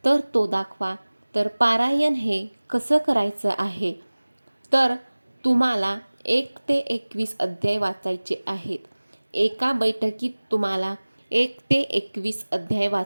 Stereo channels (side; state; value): both; inverted; correlation -1.00